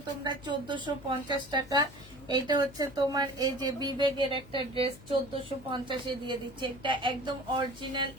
তোমরা 1450 টাকা। এটা হচ্ছে তোমার এই যে বিবেকের একটা ড্রেস 1450-এ দিয়ে দিচ্ছে। এটা একদম অরিজিনাল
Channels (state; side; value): noise; left; hum, 19 dB below the sound